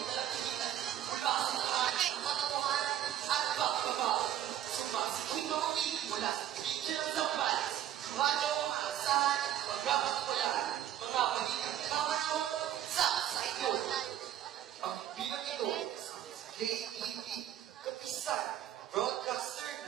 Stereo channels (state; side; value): quieter; left; 11.5 dB